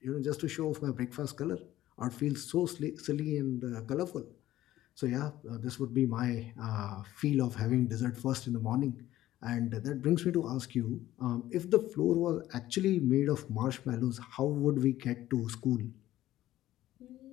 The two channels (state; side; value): quieter; right; 14.3 dB